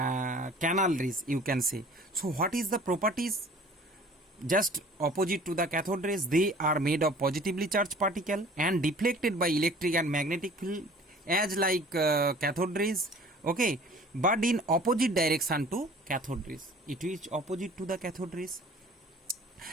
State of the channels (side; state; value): both; normal; correlation 0.48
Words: rays, you can say. So what is the properties? Just opposite to the cathode rays, they are made of positively charged particle and deflected by electric and magnetic field as like cathode rays. Okay, but in opposite direction to cathode rays, it is opposite to the cathode rays,